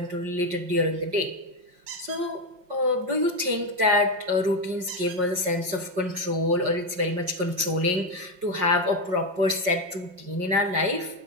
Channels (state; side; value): late; left; 5.5 ms